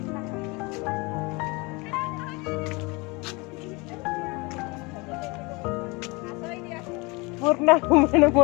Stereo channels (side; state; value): right; quieter; 26.7 dB